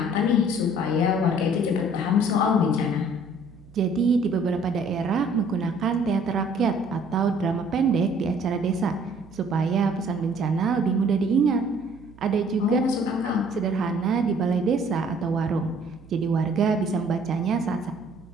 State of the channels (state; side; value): noise; right; hum, 23 dB below the sound